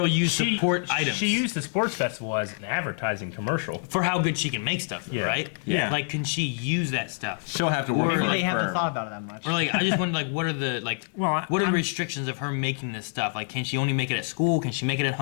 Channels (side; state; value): right; silent; 61 dB below the other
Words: use support items? She used the sports festival as an advertising commercial. For how good she can make stuff, right? Yeah. Like, can she use that stuff? She'll have to work Maybe for they a haven't firm. thought about it that much. Or like, I just wonder, like, what are the what are the restrictions of her making this stuff? Like, can she only make it at school? Can she make it at